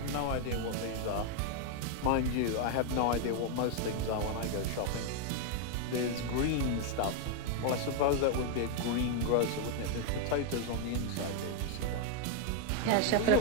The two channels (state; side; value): different; both; correlation 0.00